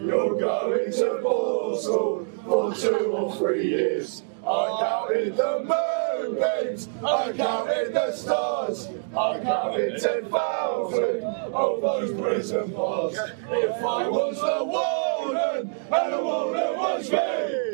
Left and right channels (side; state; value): left; silent; digital silence